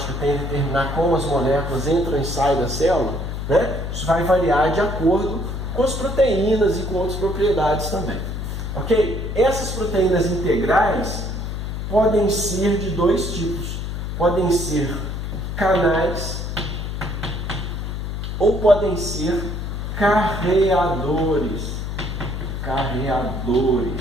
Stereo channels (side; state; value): left; noise; hum, 4 dB below the sound